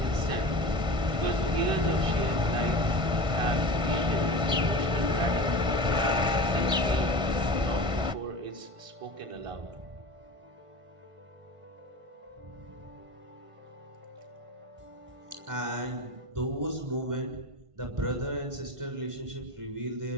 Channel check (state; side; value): late; left; 1.5 ms